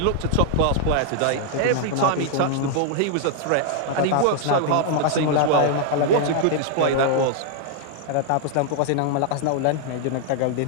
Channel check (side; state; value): both; different; correlation -0.01